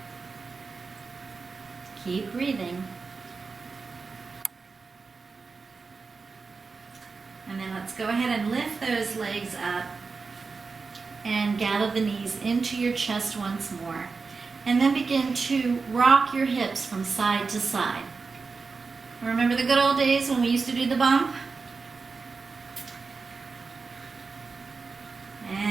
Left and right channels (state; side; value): quieter; left; 4.6 dB